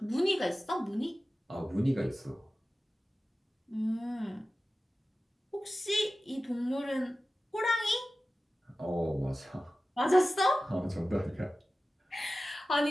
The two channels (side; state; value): both; normal; correlation 0.95